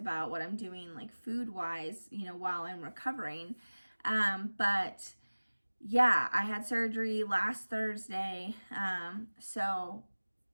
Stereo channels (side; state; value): both; inverted; correlation -1.00